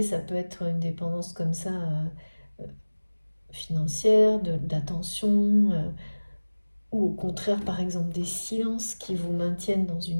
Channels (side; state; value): both; inverted; correlation -1.00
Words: ça peut être une dépendance comme ça, financière, d'attention, ou au contraire, par exemple, des silences qui vous maintiennent dans